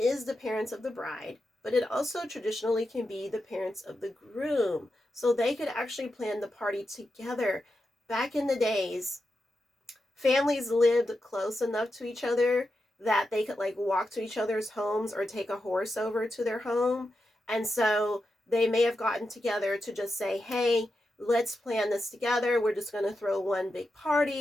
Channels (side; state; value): both; normal; correlation 0.88